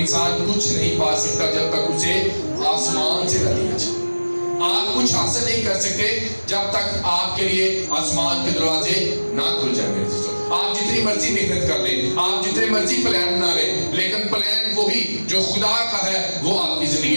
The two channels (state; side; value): inverted; both; correlation -1.00